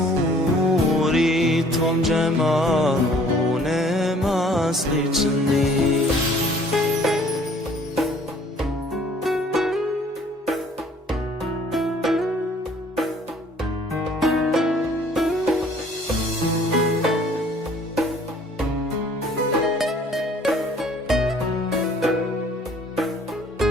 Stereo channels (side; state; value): both; normal; correlation 0.56